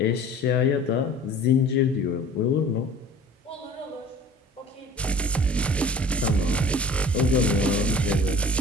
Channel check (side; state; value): both; normal; correlation 0.46